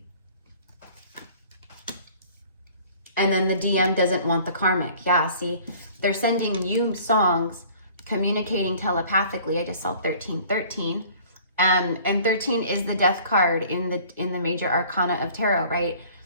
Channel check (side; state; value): both; inverted; correlation -0.50